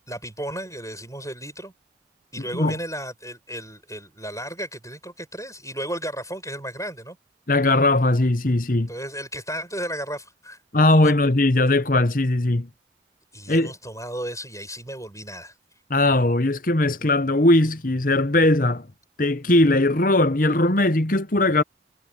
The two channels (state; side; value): normal; both; correlation 0.47